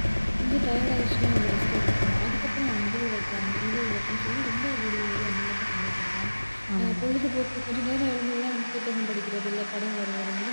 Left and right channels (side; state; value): both; inverted; correlation -1.00